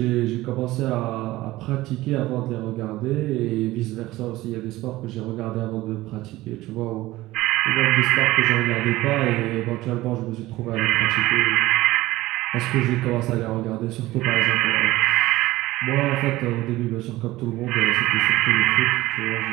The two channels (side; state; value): left; quieter; 17.6 dB